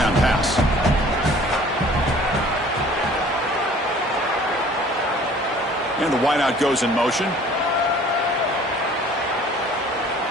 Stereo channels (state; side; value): normal; both; correlation 0.51